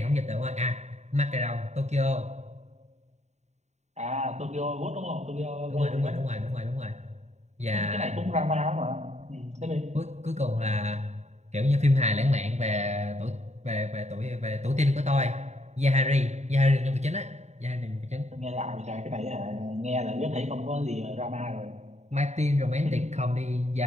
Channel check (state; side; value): late; left; 0.33 ms